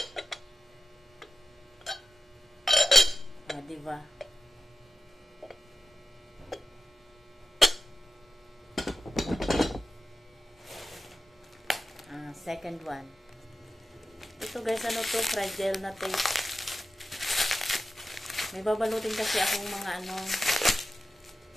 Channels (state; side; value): normal; both; correlation 0.93